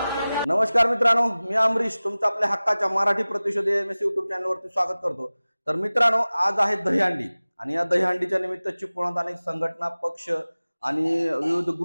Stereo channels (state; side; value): inverted; both; correlation -0.98